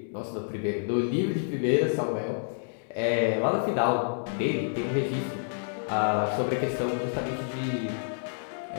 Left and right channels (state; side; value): silent; right; digital silence